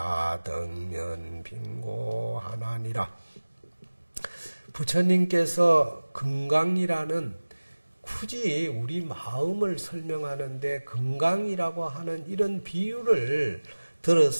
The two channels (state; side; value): inverted; both; correlation -1.00